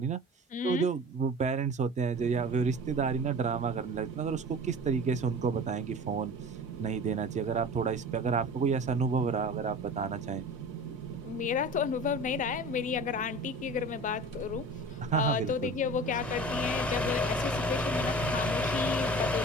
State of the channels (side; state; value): both; normal; correlation 0.38